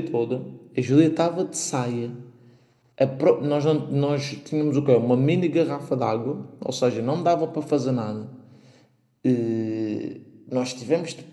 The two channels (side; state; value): both; identical; correlation 1.00